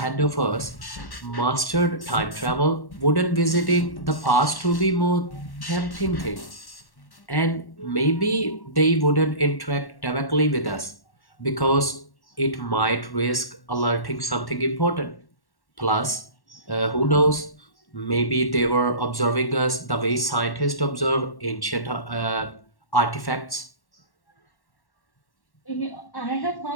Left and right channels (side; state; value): right; late; 1.1 ms